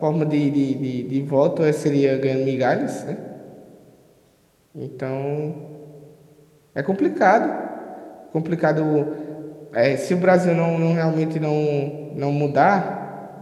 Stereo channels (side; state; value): both; identical; correlation 1.00